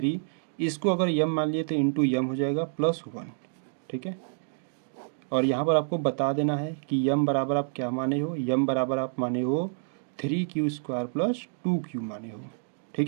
इसको अगर m मान लिए तो इंटू m हो जाएगा +1, ठीक है। और यहाँ पर आपको बता देना है कि m बराबर आप क्या माने हो, m बराबर आप माने हो 3q² प्लस 2q माने हो,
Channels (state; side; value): silent; left; digital silence